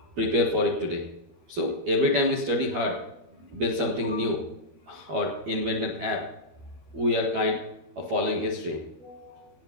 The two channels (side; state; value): left; late; 12 ms